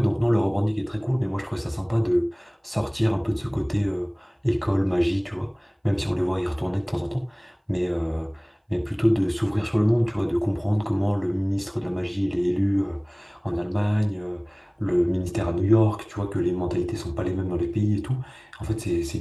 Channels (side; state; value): both; identical; correlation 1.00